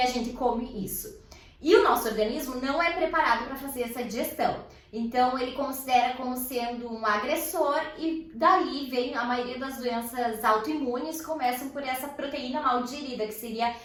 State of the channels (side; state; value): both; identical; correlation 1.00